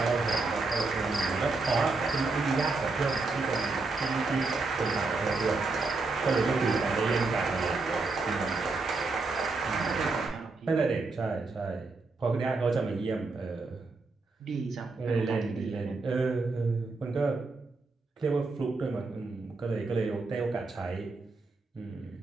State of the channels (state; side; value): quieter; left; 3.8 dB